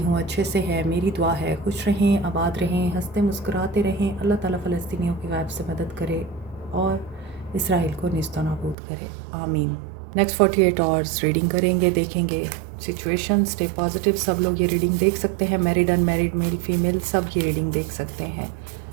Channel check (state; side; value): drops out; left; at 8.8 s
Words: अच्छे से है। मेरी दुआ है खुश रहें, आबाद रहें, हंसते मुस्कुराते रहें। अल्लाह ताला फ़लस्तीनियों की गायब से मदद करे और इसराइल को निस्तो नाबूद करे, आमीन। नेक्स्ट 48 आवर्स रीडिंग करेंगे, देखेंगे सिचुएशन। Stay positive. सब लोग ये रीडिंग देख सकते हैं, मैरिड अनमैरिड, मेल फीमेल, सब ये रीडिंग देख सकते हैं।